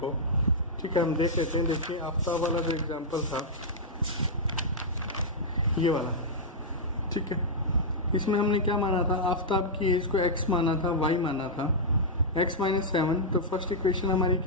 ठीक है। हम देख लेते हैं। देखिए आफ्ताब वाला जो एग्जांपल था ये वाला, ठीक है। इसमें हमने क्या माना था, आफ्ताब की एज को x माना था, y माना था, x माइनस 7। तो फर्स्ट इक्वेशन हमारी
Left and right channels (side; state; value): both; normal; correlation -0.07